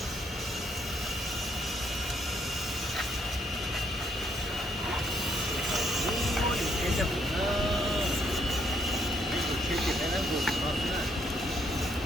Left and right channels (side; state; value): both; normal; correlation 0.72